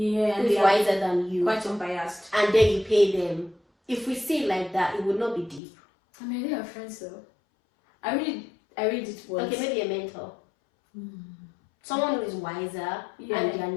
Who is wiser than you. Quite unbiased. And then you pay them. If we see it like that, it would not be deep. I mean, they are friends though. I really did once. Okay, maybe a mentor. Someone who is wiser and they are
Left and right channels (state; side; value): drops out; right; at 5.6 s